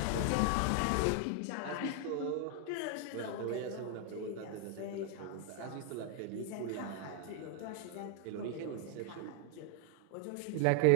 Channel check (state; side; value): different; both; correlation 0.00